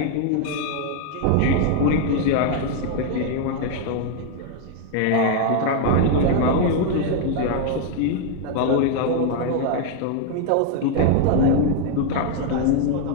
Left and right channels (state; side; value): different; both; correlation 0.00